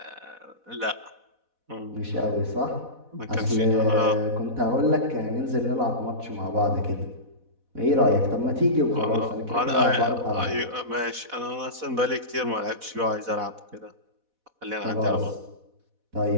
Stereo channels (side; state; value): left; late; 4.1 ms